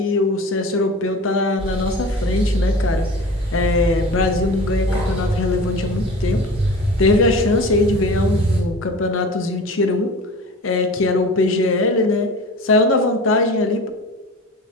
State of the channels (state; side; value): normal; both; correlation 0.37